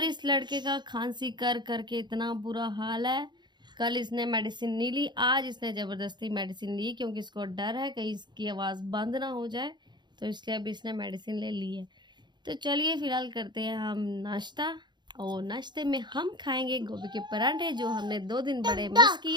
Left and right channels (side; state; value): left; late; 0.21 ms